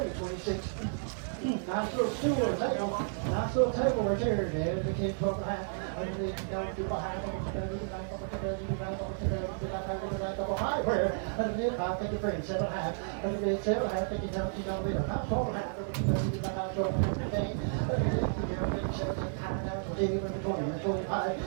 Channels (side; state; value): left; silent; 56 dB below the other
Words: Nice little stool or table. Nice little table right there, man. 15, 12 and a half. Thank you, friend. 7 and a half. 7 and a half. Thank you, $12 and a half. 12 and a half.